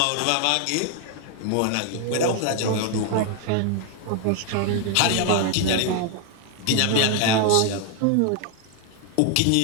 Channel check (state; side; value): different; both; correlation 0.01